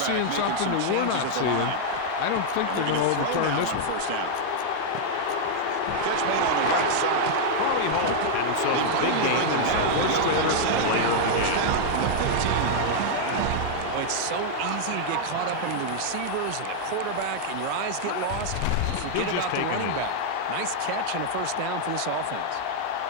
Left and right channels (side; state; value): both; different; correlation -0.01